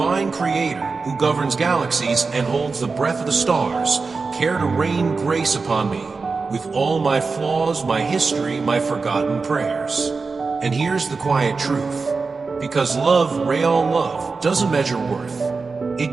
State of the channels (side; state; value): left; quieter; 4.4 dB